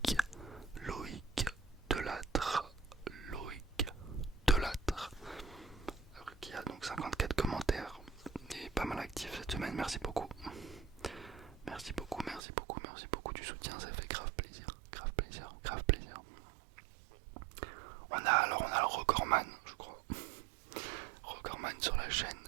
Delattre. Loïc Delattre. Qui a donc 54 commentaires. Et pas mal actif cette semaine. Merci beaucoup. Merci beaucoup du soutien. Ça fait grave plaisir. On a le recordman, je crois. Recordman sur la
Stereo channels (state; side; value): drops out; left; at 12.4 s